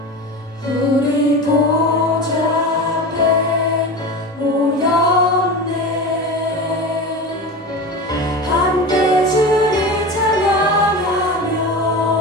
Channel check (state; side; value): normal; both; correlation 0.28